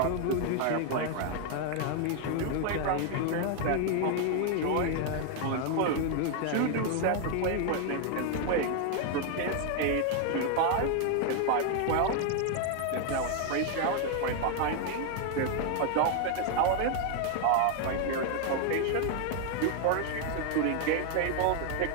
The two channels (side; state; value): both; different; correlation 0.00